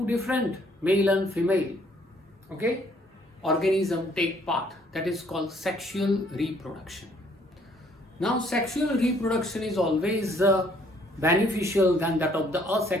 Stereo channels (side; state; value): both; normal; correlation 0.64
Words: different, male and female, okay, organism take part, that is called sexual reproduction. Now, sexual reproduction is always beneficial than that of the